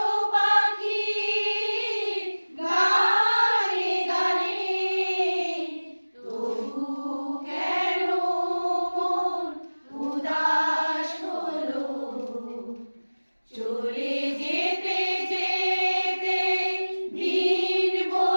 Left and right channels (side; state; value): both; inverted; correlation -1.00